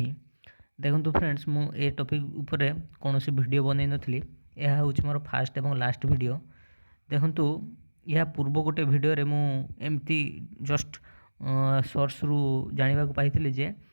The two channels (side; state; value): both; inverted; correlation -1.00